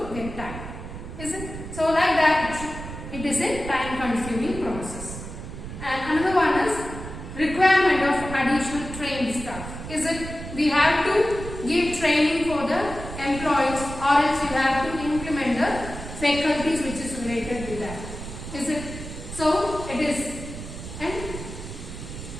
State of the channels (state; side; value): noise; right; rumble, 10 dB below the sound